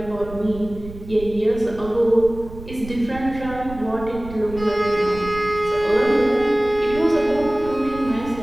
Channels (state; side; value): noise; right; rumble, 14 dB below the sound